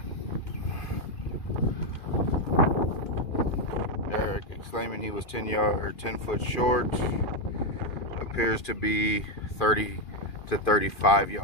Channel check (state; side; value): late; right; 2.4 ms